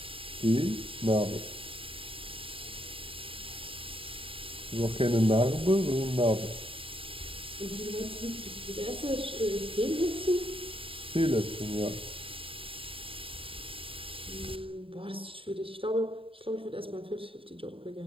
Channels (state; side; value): late; left; 0.26 ms